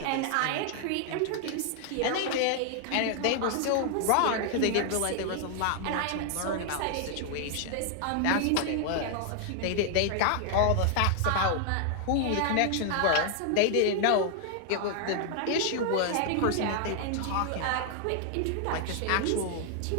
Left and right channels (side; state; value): both; different; correlation 0.00